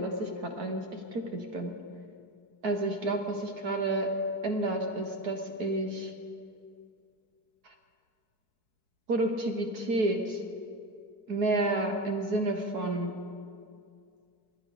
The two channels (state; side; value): late; left; 4.6 ms